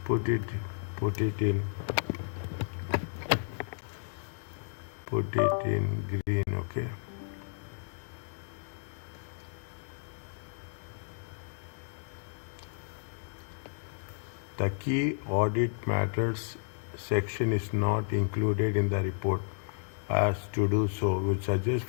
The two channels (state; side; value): silent; right; digital silence